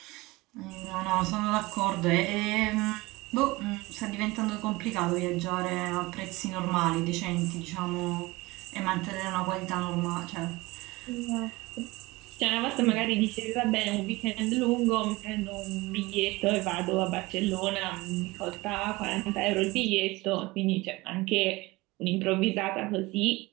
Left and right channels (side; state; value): left; quieter; 21.6 dB